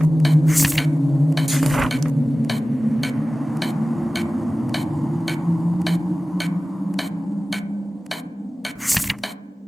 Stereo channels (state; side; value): normal; both; correlation 0.97